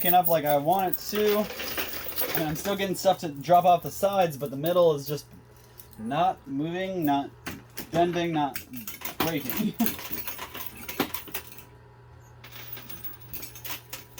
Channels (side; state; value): both; identical; correlation 1.00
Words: up like I want it to. And I'm still getting stuff to drop off the sides, but the middle is just not moving, not bending, not breaking.